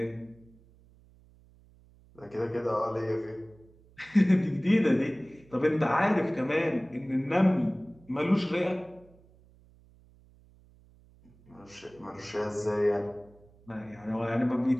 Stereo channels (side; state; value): right; noise; hum, 27 dB below the sound